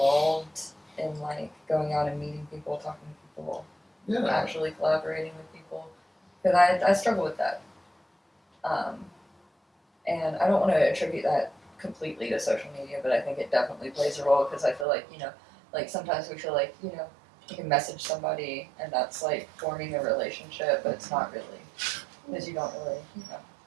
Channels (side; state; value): left; drops out; at 14.9 s